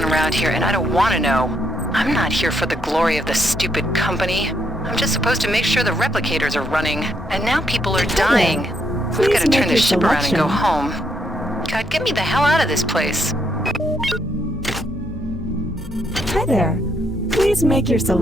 around here, and I don't want to know. I'm not here for the glory of the stupid company. I'm just supposed to make sure the replicators are running, and now people are dying. I've got to turn this ship around and go home. God, get me the hell out of this place. Hi there. Please make your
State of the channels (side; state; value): both; normal; correlation 0.76